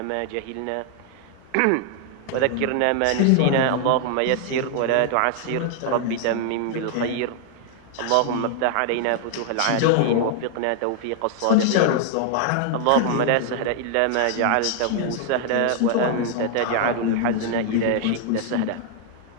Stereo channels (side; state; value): both; different; correlation 0.00